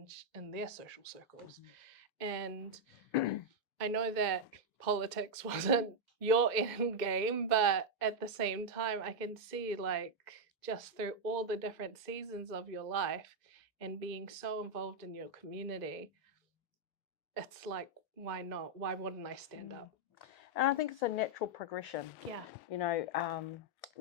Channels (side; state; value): both; normal; correlation -0.02